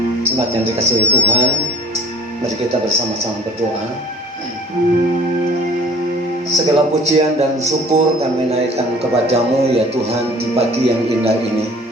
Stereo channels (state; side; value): normal; both; correlation 0.47